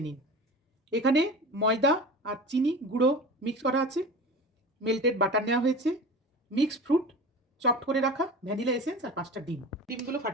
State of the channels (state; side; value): normal; both; correlation 0.34